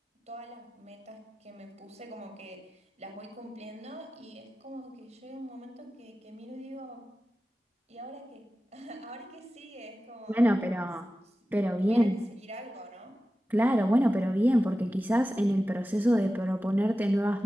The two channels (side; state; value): both; normal; correlation 0.94